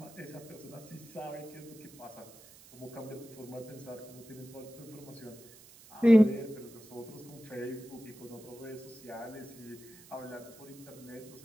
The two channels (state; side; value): noise; right; hiss, 21 dB below the sound